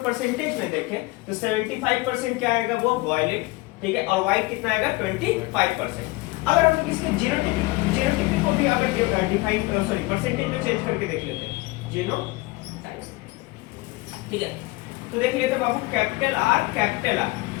परसेंटेज में देखें तो 75% क्या आएगा? वो वायलेट, ठीक है। और व्हाइट कितना आएगा? 25%। अगर हम लोग इसके जीनोटाइपिक को भी अगर डिफाइन परसेंटेज में चेंज करके देख लेते हैं, जीनोटाइप, ठीक है। तो देख लेते हैं बाबू, कैपिटल आर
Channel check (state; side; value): quieter; right; 22.2 dB